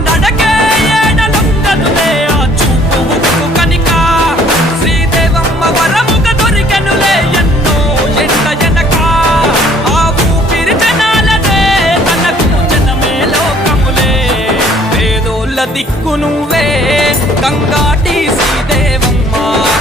నడకే ఏడలుంగదులే ఆ చూపు కనిక శ్రీదేవమ్మ వరముగ దొరికెనులే ఎన్నో ఎండ ఎనక ఆ ఊపిరి జనాలదే తనకు జనమే లోకములే పేదోళ్ళ దిక్కు నువ్వే గంగాటి శ్రీదేవమ్మ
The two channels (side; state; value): both; normal; correlation 0.58